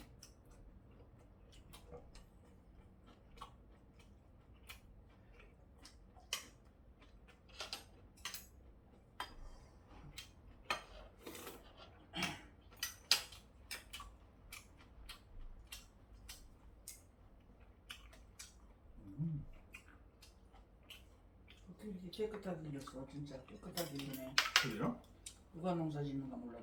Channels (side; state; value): both; identical; correlation 1.00